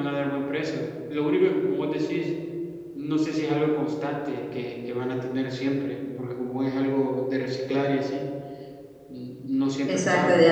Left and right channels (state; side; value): identical; both; correlation 1.00